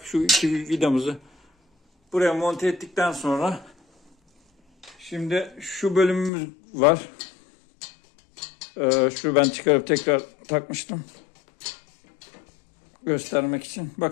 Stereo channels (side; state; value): right; drops out; at 6.3 s